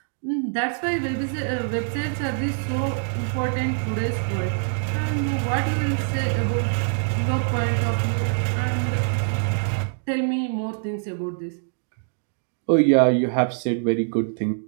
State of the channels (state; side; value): silent; left; digital silence